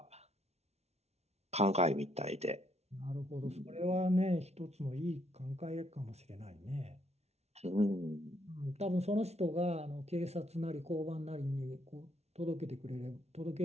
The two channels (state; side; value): late; left; 0.31 ms